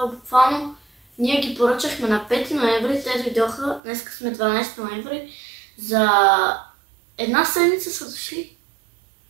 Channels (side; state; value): left; drops out; at 3.8 s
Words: буквално ние ги поръчахме на 5 ноември, те дойдоха, днес сме 12 ноември, за една седмица са дошли.